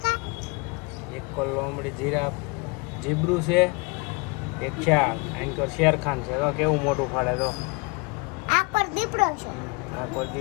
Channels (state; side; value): quieter; right; 28.8 dB